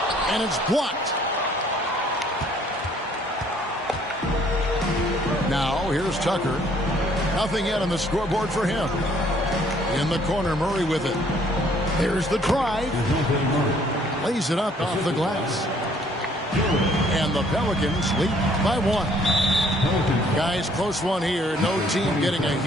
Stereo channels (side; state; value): both; normal; correlation 0.62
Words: And it's blocked. Now here's Tucker. Nothing yet on the scoreboard for him. In the corner, Murray with it. There's the drive. Lays it up off the glass. And the Pelicans lead by 1. Guys, close one here. No team getting a